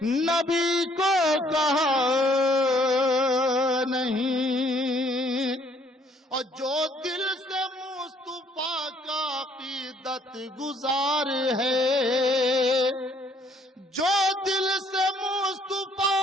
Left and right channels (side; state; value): both; normal; correlation 0.64